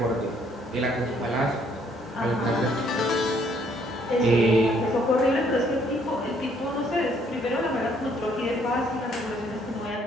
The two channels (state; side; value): normal; both; correlation 0.65